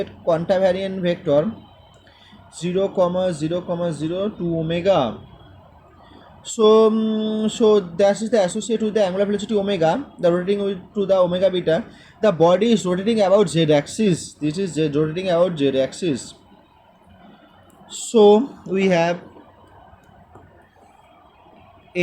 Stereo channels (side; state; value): both; identical; correlation 1.00